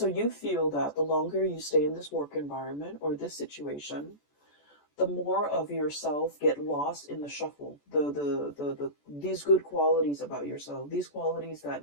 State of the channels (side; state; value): right; late; 14 ms